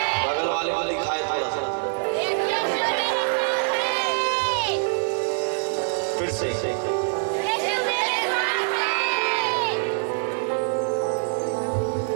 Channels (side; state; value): left; silent; 62 dB below the other